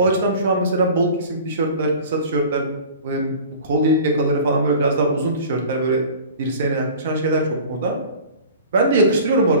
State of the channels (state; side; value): inverted; both; correlation -0.42